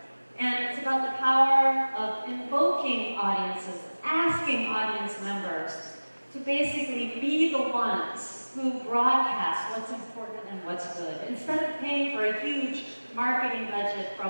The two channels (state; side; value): inverted; both; correlation -1.00